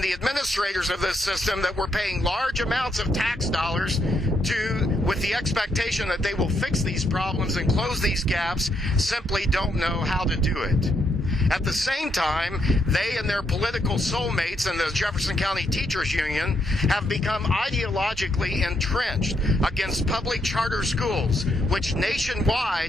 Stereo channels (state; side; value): normal; both; correlation 0.76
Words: the administrators of this system that we're paying large amounts of tax dollars to, with the expectation that they will fix these problems and close these gaps, simply don't know how to do it. At the same time, they and their political soulmates in the Jefferson County Teachers Union have become ideologically entrenched against public charter schools, which